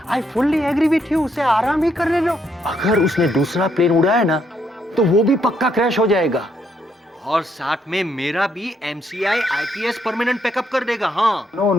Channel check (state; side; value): normal; both; correlation 0.74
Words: I fully agree with you. उसे आराम ही करने दो। अगर उसने दूसरा प्लेन उड़ाया ना तो वो भी पक्का क्रैश हो जाएगा, और साथ में मेरा भी MCI IPS परमानेंट पैकअप कर देगा। हाँ, no